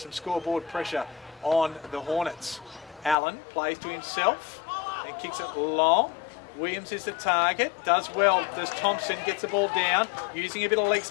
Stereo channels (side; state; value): right; drops out; at 3.2 s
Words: some scoreboard pressure on the Hornets. Allen plays to himself and kicks it long. Williams is the target, does well, does Thompson, gets the ball down, using a bit of leg